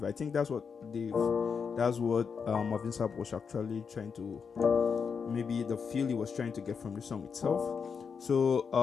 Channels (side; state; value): right; quieter; 6.1 dB